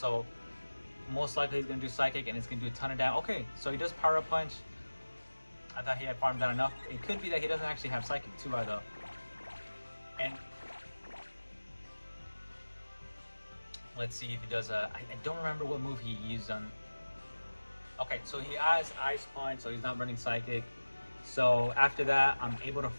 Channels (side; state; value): both; inverted; correlation -1.00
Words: most likely he's going to do Psychic, and it's going to do a ton of damage. Okay, so he does Power Up Punch. I thought he had farmed down enough. It could be that he doesn't actually have Psychic too, though. And let's see if he does I don't remember what move he used on. Okay, so he has Ice Punch, so he's not running Psychic. So after that, I'm able to